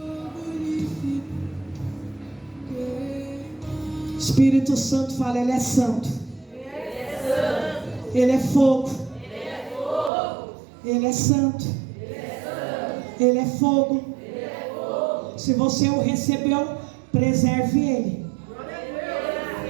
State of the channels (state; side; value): drops out; left; at 10.1 s